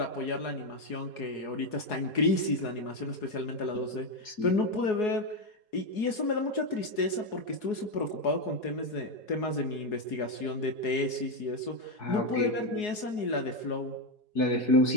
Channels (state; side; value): late; right; 4.7 ms